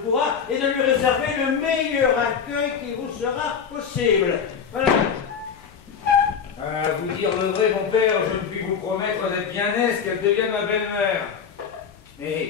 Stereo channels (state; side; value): quieter; right; 6.9 dB